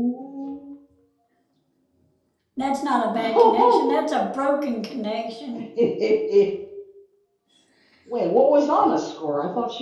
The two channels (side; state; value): both; identical; correlation 1.00